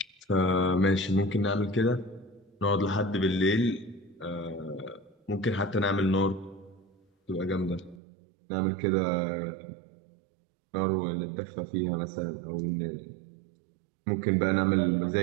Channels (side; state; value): left; drops out; at 8.0 s